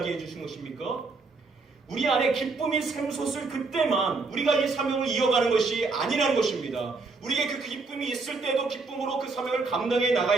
주신 것입니까? 우리 안에 기쁨이 샘솟을 그때만 우리가 이 사명을 이어가는 것이 아니라는 것입니다. 우리에게 그 기쁨이 있을 때도 기쁨으로 그 사명을 감당해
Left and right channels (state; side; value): quieter; left; 4.0 dB